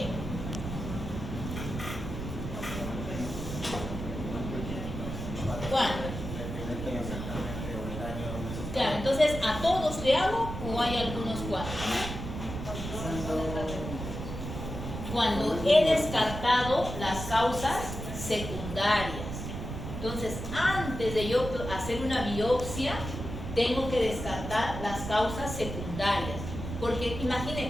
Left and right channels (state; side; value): noise; right; rumble, 7 dB below the sound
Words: ¿Cuándo? Claro, entonces, ¿a todos le hago o hay algunos cuantos? Cuando he descartado las causas secundarias. Entonces, antes de yo hacer una biopsia, tengo que descartar las causas secundarias. Porque